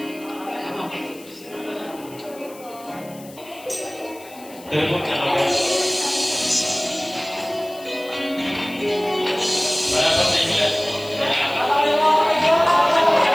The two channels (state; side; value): noise; left; hiss, 21 dB below the sound